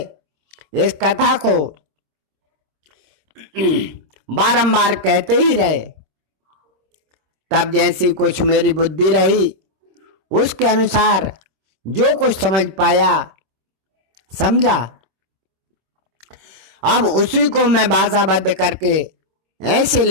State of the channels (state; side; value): late; left; 26 ms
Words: इस कथा को बारंबार कहते ही रहे। तब जैसी कुछ मेरी बुद्धि रही उसके अनुसार जो कुछ समझ पाया समझा। अब उसी को मैं भाषाबद्ध करके ऐसे